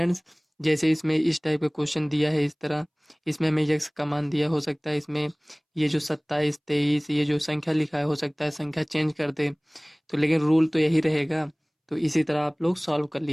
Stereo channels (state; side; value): identical; both; correlation 1.00